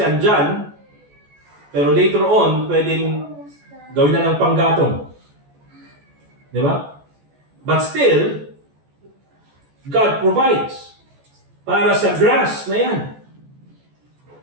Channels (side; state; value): left; late; 14 ms